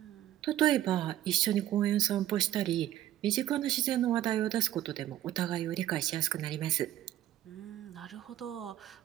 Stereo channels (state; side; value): quieter; left; 13.0 dB